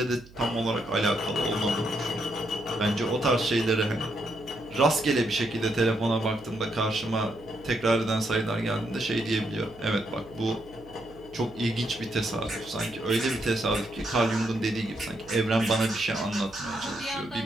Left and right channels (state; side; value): noise; right; hum, 22 dB below the sound